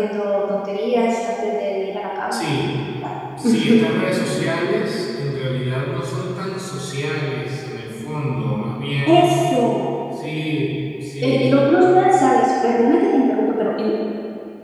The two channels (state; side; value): identical; both; correlation 1.00